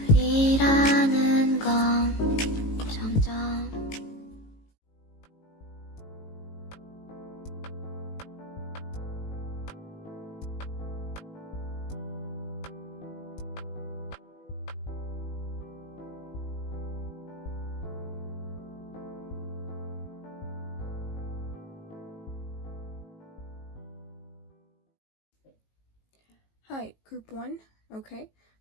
둘이라는 건 점점 Hi, group one. Okay,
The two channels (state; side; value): late; right; 18 ms